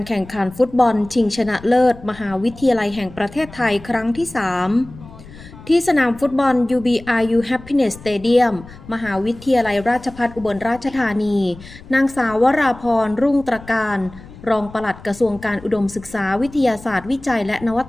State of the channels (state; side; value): noise; left; rumble, 18 dB below the sound